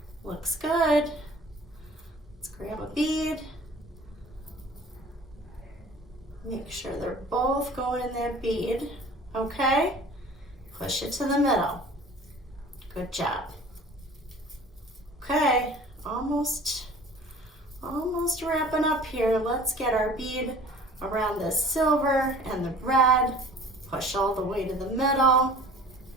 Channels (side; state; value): both; normal; correlation 0.46